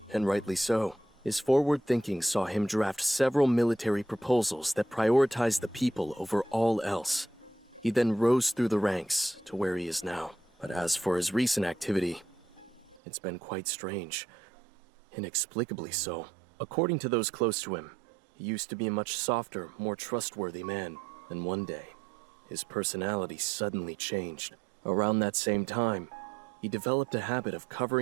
and rightly so. His forward thinking saw him draft several military proposals that prioritize the people over all else. He then rose through the ranks to where he is now. But as for his recent activity, it's been quite strange. Inexplicably so. According to those close to him, he used to be a much softer, more trustworthy man. And one day, his personality suddenly changed. Around that same time, he developed a habit of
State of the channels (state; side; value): drops out; left; at 13.0 s